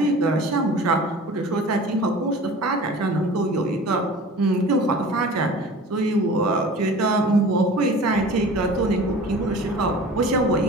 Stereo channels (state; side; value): normal; both; correlation 0.41